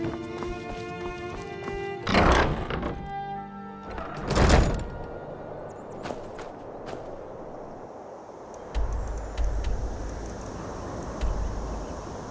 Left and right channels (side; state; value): both; identical; correlation 1.00